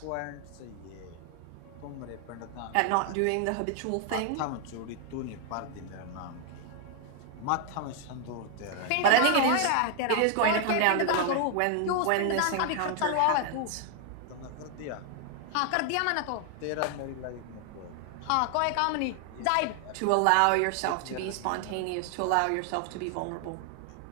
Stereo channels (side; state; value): both; different; correlation 0.00